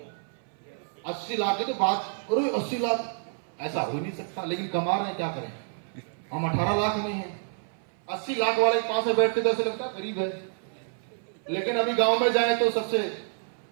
80 लाख की तो बात करो, 80 लाख ऐसा हो ही नहीं सकता, लेकिन कमा रहे हैं, क्या करें? हम 18 लाख में हैं। 80 लाख वाले के पास में बैठते तो ऐसे लगता है गरीब है, लेकिन अभी गांव में जाए तो सबसे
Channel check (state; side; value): silent; left; 58 dB below the other